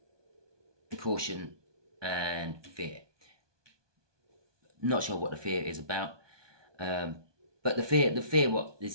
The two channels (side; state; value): left; late; 1.2 ms